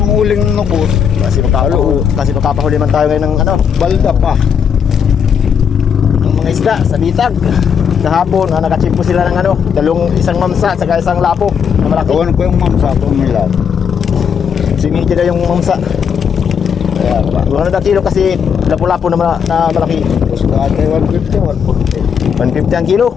huling nukos. Kasi magkapahuli man tayo ngayon ng ano, Balda pa. ng mga isda sa bitag. Kahapon, nakachimpo sila ng ano, isang mamsa at saka isang lapo na malaki. Kawan ko yung mamsa ko nila. Simiki na yung mamsa. Kaya pa. Ano na kilo kasi lapo-lapo na malaki. Tapos kaya 150, 150 ang kilo.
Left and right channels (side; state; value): right; quieter; 7.3 dB